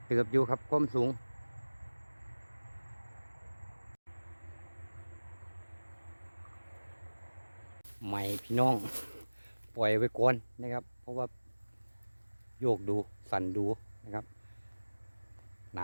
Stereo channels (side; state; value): both; inverted; correlation -1.00